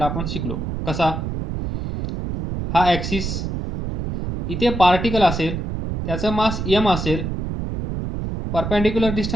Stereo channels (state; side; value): noise; right; rumble, 4 dB below the sound